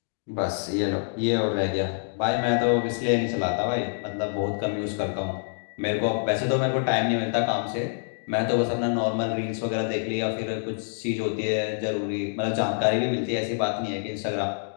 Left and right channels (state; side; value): silent; right; digital silence